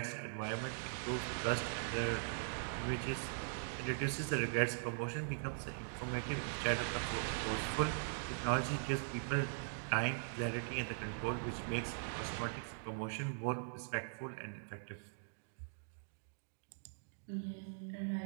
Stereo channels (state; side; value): silent; left; digital silence